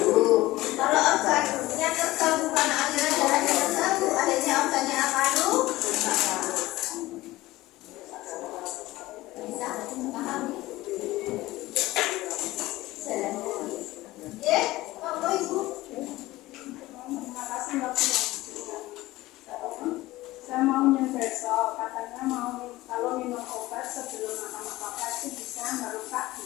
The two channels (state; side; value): quieter; right; 18.0 dB